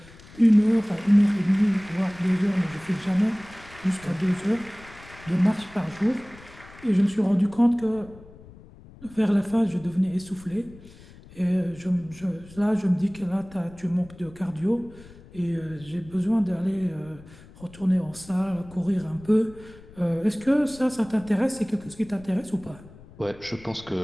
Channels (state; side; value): noise; left; rumble, 21 dB below the sound